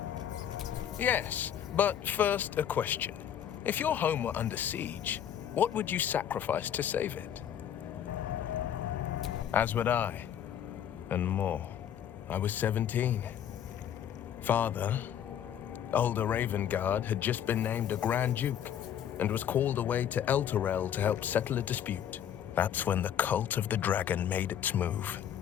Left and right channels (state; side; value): quieter; right; 9.6 dB